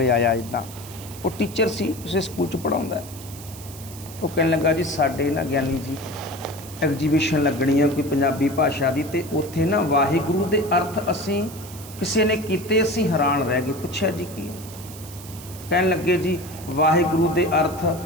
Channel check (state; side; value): noise; right; hiss, 16 dB below the sound